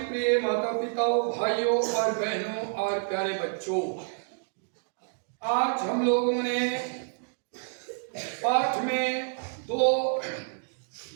प्रिय माता पिताओं, भाइयों और बहनों और प्यारे बच्चों, आज हम लोगों ने पाठ में दो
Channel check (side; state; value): left; silent; digital silence